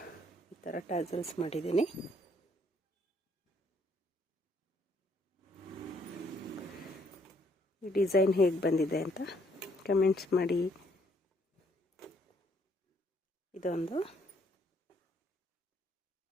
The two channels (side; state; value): both; normal; correlation 0.68